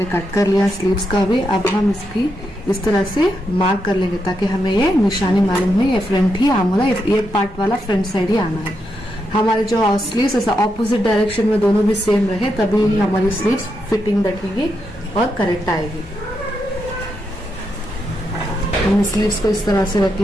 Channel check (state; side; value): normal; both; correlation 0.83